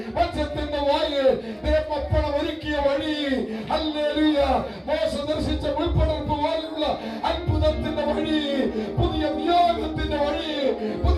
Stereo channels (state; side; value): identical; both; correlation 1.00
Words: മത്സ്യത്തിന്റെ വായിൽ ദേവപ്പണം ഒരുക്കിയ വഴി, ഹല്ലേലൂയ, മോശ ദർശിച്ച മുൾപ്പടർപ്പ് പോലുള്ള അത്ഭുതത്തിന്റെ വഴി, പുതിയ നിയോഗത്തിന്റെ വഴി,